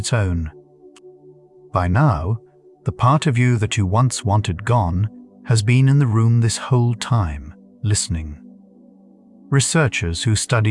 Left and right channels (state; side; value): identical; both; correlation 1.00